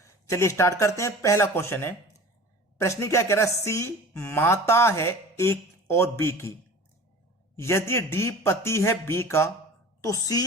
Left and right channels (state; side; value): normal; both; correlation 0.40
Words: चलिए स्टार्ट करते हैं। पहला क्वेश्चन है, प्रश्न क्या कह रहा है, सी माता है ए और बी की, यदि डी पति है बी का तो